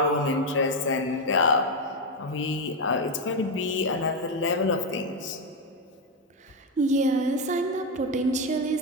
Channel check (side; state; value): both; normal; correlation 0.07